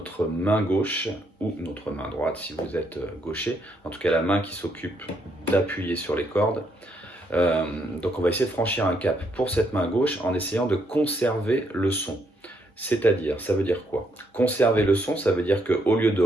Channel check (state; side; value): normal; both; correlation 0.74